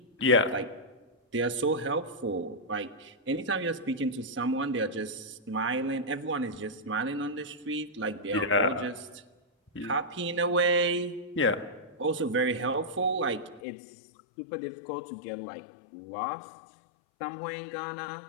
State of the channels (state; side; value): drops out; right; at 13.6 s